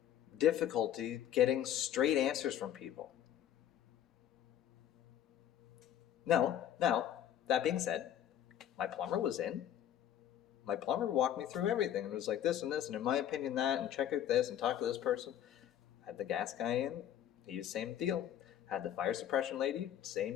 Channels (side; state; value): right; quieter; 10.7 dB